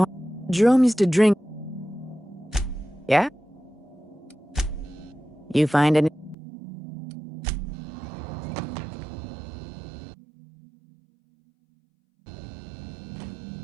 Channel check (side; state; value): left; drops out; at 6.4 s